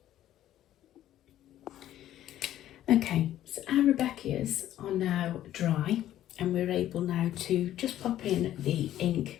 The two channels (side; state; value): right; quieter; 12.6 dB